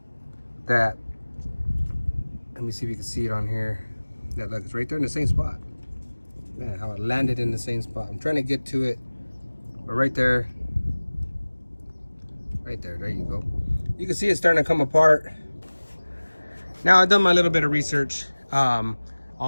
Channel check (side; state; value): both; inverted; correlation -1.00